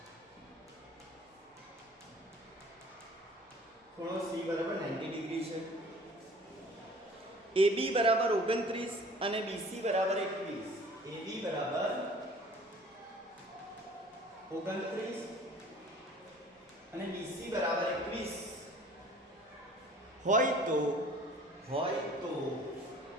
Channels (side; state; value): both; normal; correlation 0.49